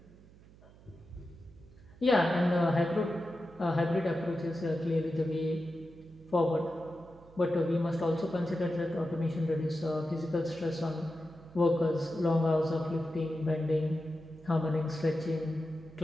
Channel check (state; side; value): noise; right; hum, 23 dB below the sound